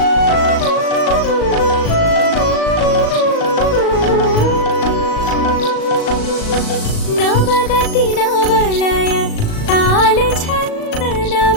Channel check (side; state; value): right; late; 37 ms